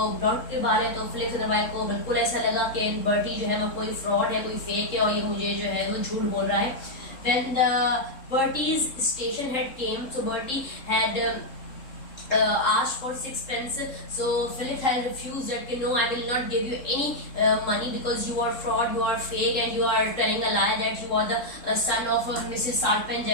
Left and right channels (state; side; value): late; right; 3.7 ms